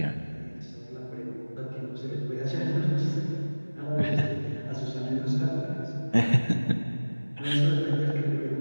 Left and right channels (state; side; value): inverted; both; correlation -1.00